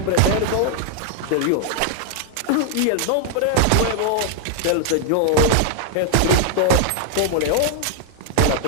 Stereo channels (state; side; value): different; both; correlation 0.00